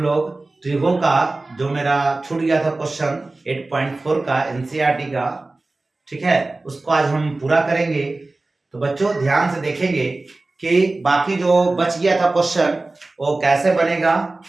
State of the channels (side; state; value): left; quieter; 3.1 dB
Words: लोग त्रिभुजों का जो मेरा छूट गया था क्वेश्चन 8.4 का एनसीईआरटी का, ठीक है, उसको आज हम पूरा करेंगे। तो बच्चों ध्यान से देखेंगे कि बाकी जो बच गया था क्वेश्चन वो कैसे बनेगा।